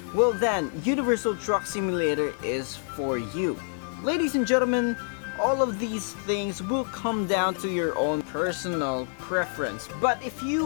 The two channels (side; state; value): right; silent; 59 dB below the other